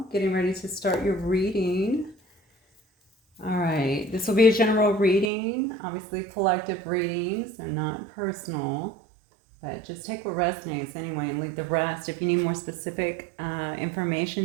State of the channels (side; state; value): left; drops out; at 5.3 s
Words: Getting ready to start your reading. All right, this will be a general reading, obviously collective readings and not personal, but just take what resonates anyway and leave the rest. If you need more specific information,